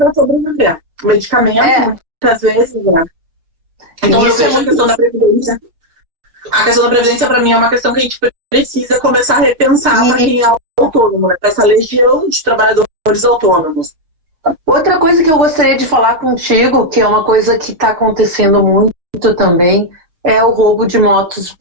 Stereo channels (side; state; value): left; late; 6.4 ms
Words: sobreviver. Medicamento, muitas vezes, né? Então eu vejo a questão da Previdência. A questão da Previdência, para mim, é uma questão que a gente precisa começar a repensar para quem é autônomo, né? Para essa legião de trabalhadores autônomos. Outra coisa que eu gostaria de falar contigo, que é uma coisa que está acontecendo muito também, é o roubo de motos